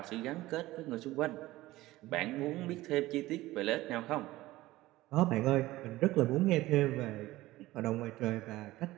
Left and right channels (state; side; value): quieter; left; 17.4 dB